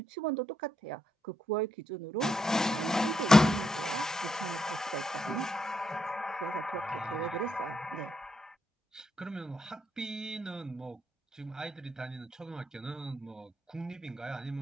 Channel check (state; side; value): normal; both; correlation 0.79